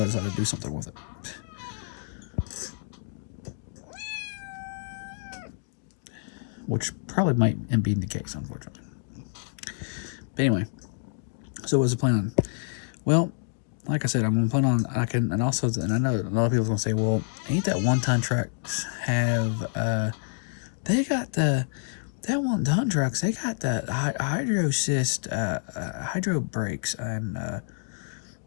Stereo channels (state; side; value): silent; right; digital silence